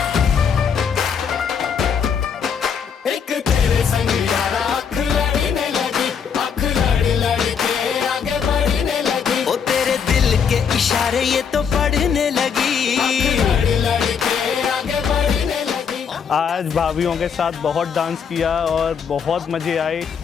एक तेरे संग यारा अख लड़ने लगी, अख ये तो पढ़ने लगी। आज भाभीियों के साथ बहुत डांस किया और बहुत मज़े आए।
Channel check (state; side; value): quieter; right; 6.9 dB